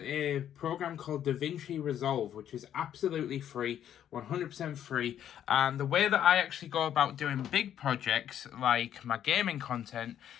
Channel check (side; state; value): right; quieter; 10.2 dB